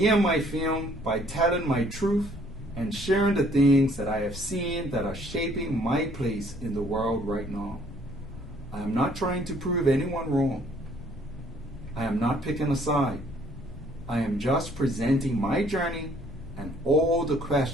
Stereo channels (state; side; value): normal; both; correlation 0.61